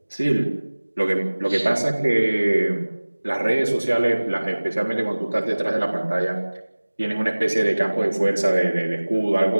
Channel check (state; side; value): inverted; both; correlation -1.00